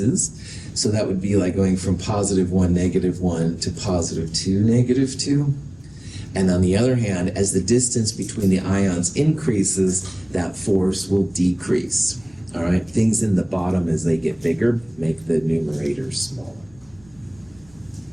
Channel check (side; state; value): left; noise; rumble, 28 dB below the sound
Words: So that would be like going from positive 1, negative 1 to positive 2, negative 2. And on the other hand, as the distance between the ions increases, that force will decrease. All right, things in the bottom as they get bigger make the numerator smaller.